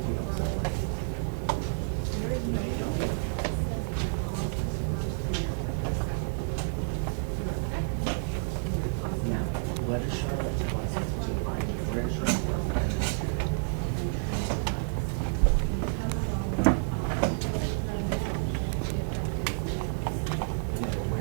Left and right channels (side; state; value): left; silent; digital silence